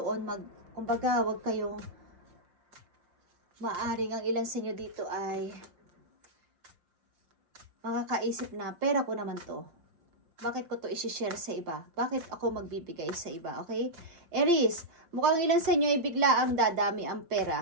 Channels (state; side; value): late; left; 5.7 ms